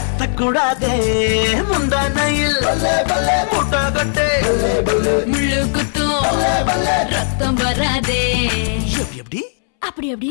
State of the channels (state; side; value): silent; right; 68 dB below the other